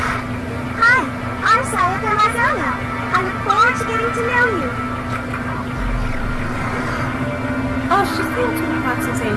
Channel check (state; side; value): identical; both; correlation 1.00